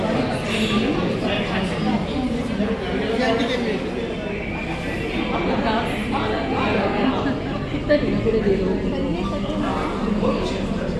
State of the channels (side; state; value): both; identical; correlation 1.00